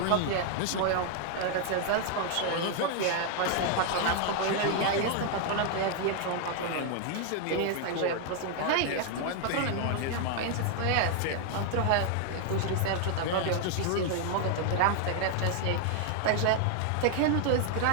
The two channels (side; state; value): both; different; correlation 0.00